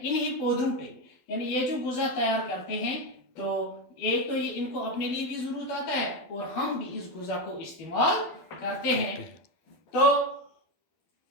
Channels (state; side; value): late; right; 12 ms